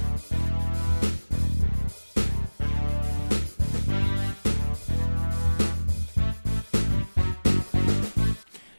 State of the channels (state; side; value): inverted; both; correlation -1.00